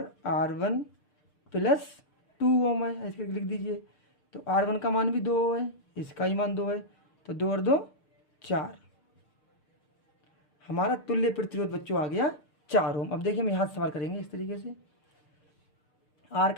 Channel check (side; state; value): right; late; 6.6 ms